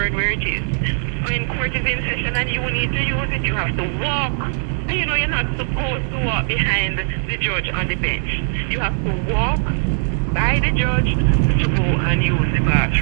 where it is. When court is in session and you need to use it, you have to walk. And you know you're not supposed to walk behind the judge on the bench. You have to walk by the judge to go and use the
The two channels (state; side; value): silent; left; digital silence